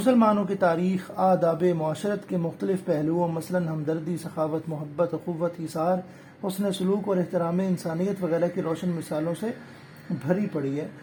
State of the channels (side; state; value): both; identical; correlation 1.00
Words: کی تاریخ آداب معاشرت کے مختلف پہلوؤں مثلاً ہمدردی، سخاوت، محبت، اخوت، ایثار، حسن سلوک اور احترام انسانیت وغیرہ کی روشن مثالوں سے بھری پڑی ہے۔